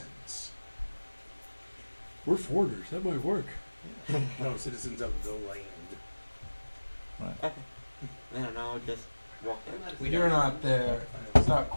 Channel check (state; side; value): inverted; both; correlation -1.00